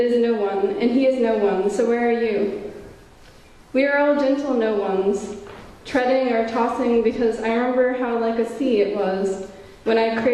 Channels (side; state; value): both; identical; correlation 1.00